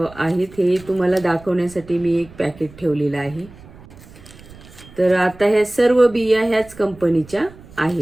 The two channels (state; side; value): noise; right; rumble, 21 dB below the sound